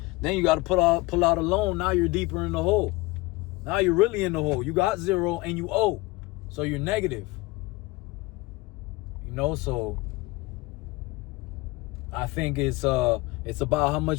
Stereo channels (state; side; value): quieter; right; 22.2 dB